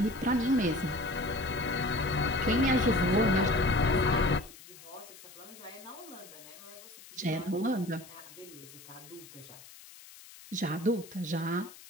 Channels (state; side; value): noise; left; hiss, 19 dB below the sound